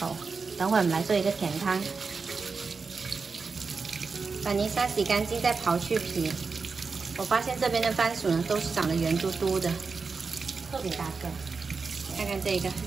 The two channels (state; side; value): quieter; left; 4.8 dB